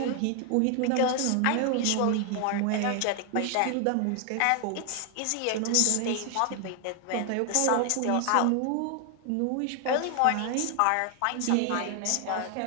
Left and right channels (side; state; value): both; different; correlation 0.00